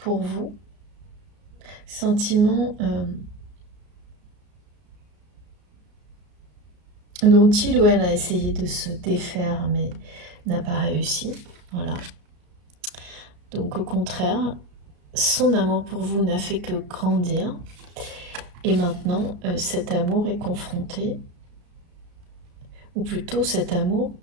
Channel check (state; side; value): late; left; 34 ms